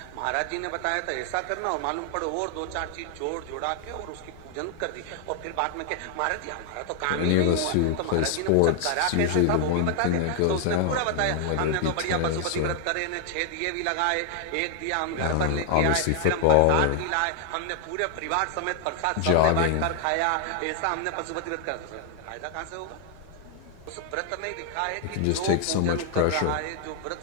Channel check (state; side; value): different; both; correlation 0.00